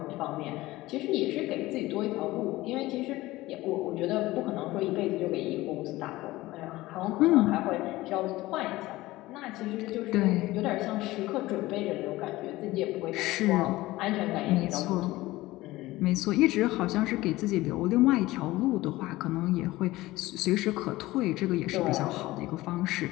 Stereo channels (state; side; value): quieter; right; 18.3 dB